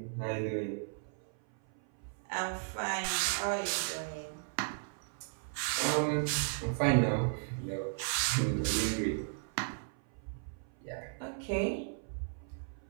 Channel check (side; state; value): left; silent; 54 dB below the other